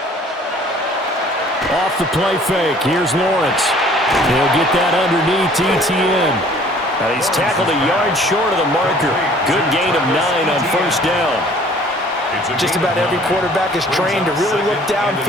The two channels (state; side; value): normal; both; correlation 0.54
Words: Off the play fake, here's Lawrence. He'll get that underneath ETN. And he's tackled a yard short of the marker. Good gain of 9 on first down. Just about every quarterback is trained to really look